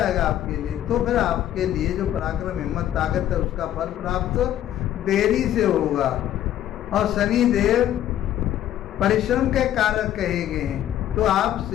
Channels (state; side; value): quieter; right; 11.8 dB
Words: आपके लिए तो फिर आपके लिए जो पराक्रम हिम्मत ताकत है उसका फल प्राप्त देरी से होगा। और शनि देव परिश्रम के कारक कहे गए हैं, तो